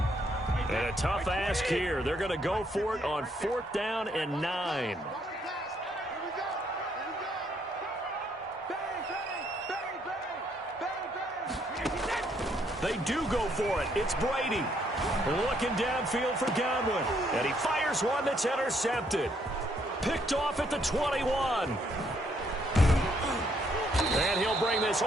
And a tough ask here. They're going to go for it on fourth down and 9. They do go for it. It's Brady. Looking downfield for Godwin. And he fires one that's intercepted. Picked off at the 21. And he'll bring this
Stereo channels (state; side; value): normal; both; correlation 0.70